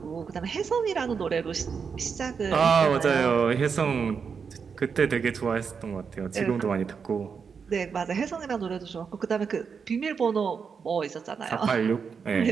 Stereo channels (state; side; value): quieter; left; 6.0 dB